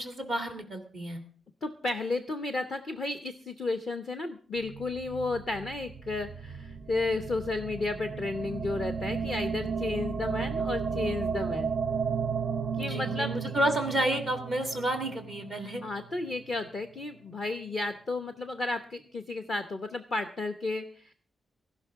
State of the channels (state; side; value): normal; both; correlation 0.78